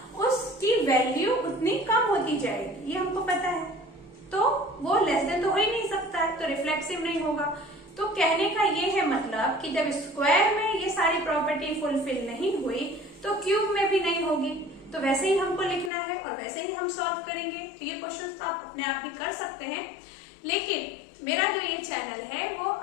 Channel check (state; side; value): drops out; right; at 15.9 s